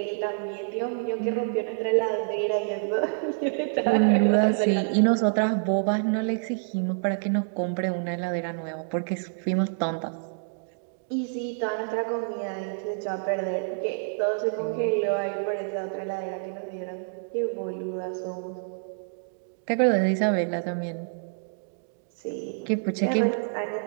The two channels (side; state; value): left; silent; digital silence